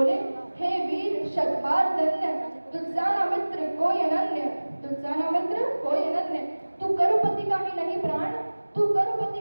हे वीर शतबार धन्य तुझसाना मित्र कोई अनन्य। तुझसाना मित्र कोई अनन्य। तू करुपति का ही नहीं प्राण तू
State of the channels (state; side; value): inverted; both; correlation -1.00